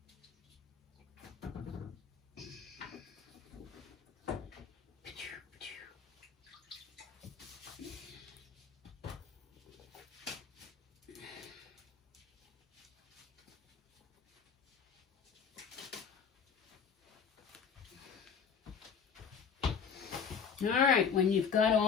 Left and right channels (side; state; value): right; quieter; 6.5 dB